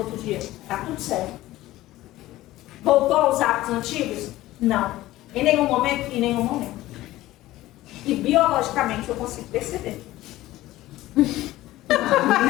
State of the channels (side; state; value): right; quieter; 16.4 dB